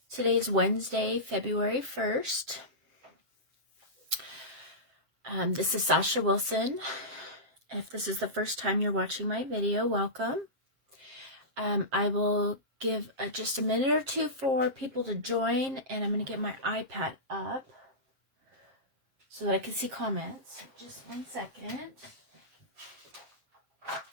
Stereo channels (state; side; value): late; left; 7.5 ms